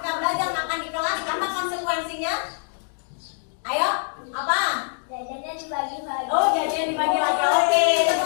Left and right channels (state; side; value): silent; right; digital silence